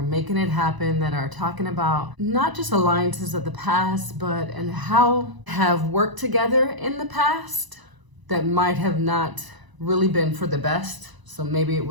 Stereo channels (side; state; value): left; late; 1.0 ms